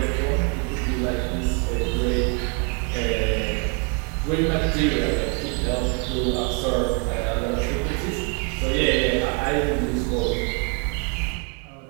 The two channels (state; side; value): quieter; left; 35.5 dB